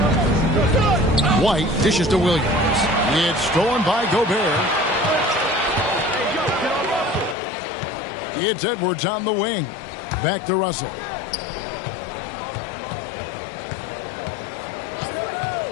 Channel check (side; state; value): right; drops out; at 7.4 s